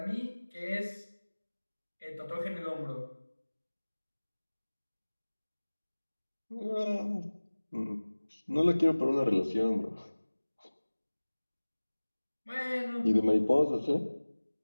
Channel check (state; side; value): inverted; both; correlation -1.00